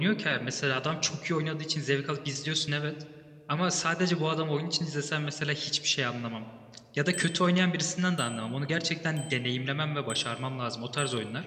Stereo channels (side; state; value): both; identical; correlation 1.00